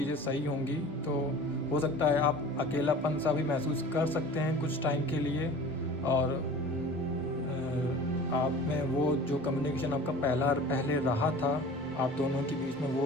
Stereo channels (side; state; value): both; normal; correlation 0.41